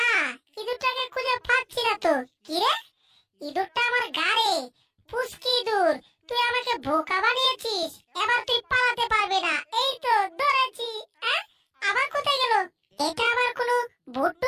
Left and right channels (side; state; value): both; identical; correlation 1.00